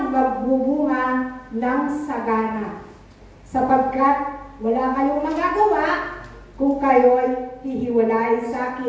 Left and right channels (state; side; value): identical; both; correlation 1.00